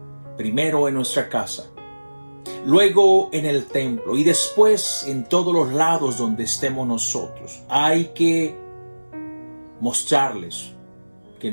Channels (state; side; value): inverted; both; correlation -1.00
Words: primero en nuestra casa, luego en el templo y después en todos los lados donde estemos nosotros. Hay que mostrarles que